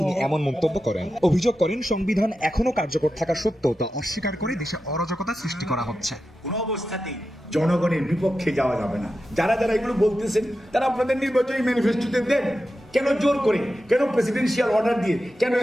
এমন মন্তব্য করেন। অভিযোগ করেন, সংবিধান এখনো কার্যকর থাকা সত্ত্বেও তা অস্বীকার করে দেশে অরাজকতা সৃষ্টি করা হচ্ছে। কোনো অবস্থাতেই জনগণের বিপক্ষে যাওয়া যাবে না। যারা যারা এগুলো বলতেছেন তারা আপনাদের নির্বাচনী ম্যানিফেস্টোতে দেন। কেন জোর করে, কেন প্রেসিডেন্সিয়াল অর্ডার দিয়ে, কেন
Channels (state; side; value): normal; both; correlation 0.91